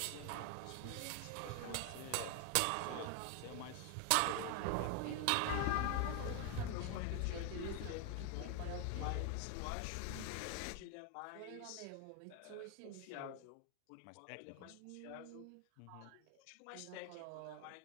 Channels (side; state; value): both; different; correlation 0.01